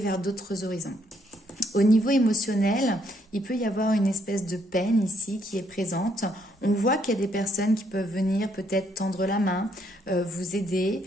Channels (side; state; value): both; normal; correlation 0.71